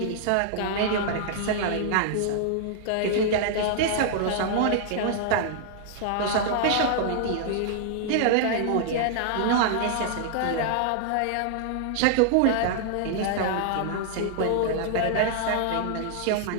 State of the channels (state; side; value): different; both; correlation -0.01